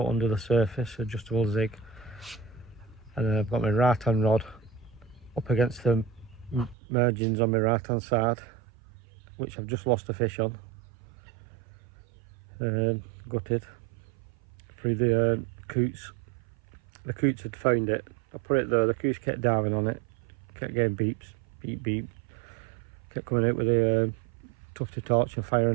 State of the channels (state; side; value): drops out; left; at 6.8 s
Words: under the surface, adjustable zig, and then I've got my right hand rod up against the margins on my right hand side, which I've just lost a fish on. Gutted through the coots. The coots had found it. I put it there, the coots kept diving on it, kept getting beeps, beep beep, kept coming out with a tufty torch and